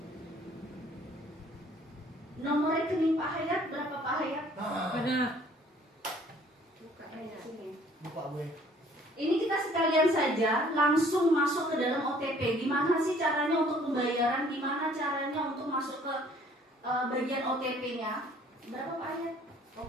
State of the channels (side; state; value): both; normal; correlation 0.57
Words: Nomor rekening Pak Hayat berapa Pak Hayat? Benar. Buka sini. Buka gue. Ini kita sekalian saja langsung masuk ke dalam OTP. Gimana sih caranya untuk pembayaran? Gimana caranya untuk masuk ke bagian OTP-nya? Berapa Pak Ayat?